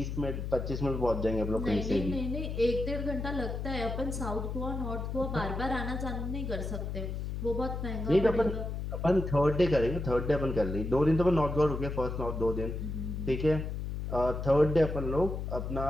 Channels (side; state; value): left; noise; hum, 4 dB below the sound